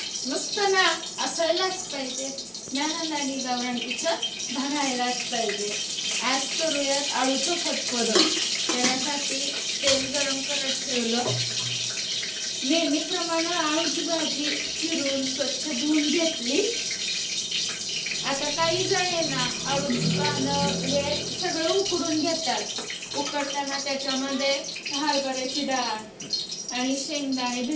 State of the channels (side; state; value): both; identical; correlation 1.00